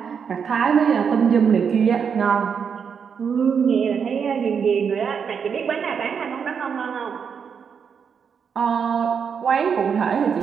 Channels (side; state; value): left; quieter; 6.8 dB